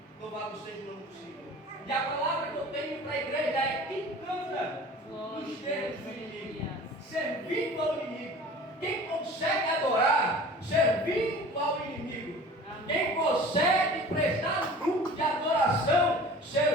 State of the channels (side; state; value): both; normal; correlation 0.42